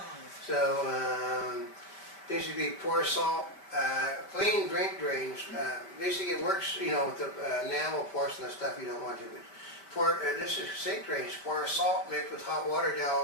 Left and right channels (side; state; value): right; late; 5.1 ms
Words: So, basically pour salt, clean drink drains. Basically it works, with the enamel porcelain stuff you don't want to. This is sink drains. Pour salt mixed with hot water